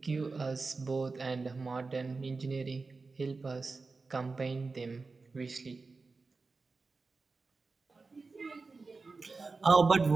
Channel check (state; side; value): quieter; left; 4.0 dB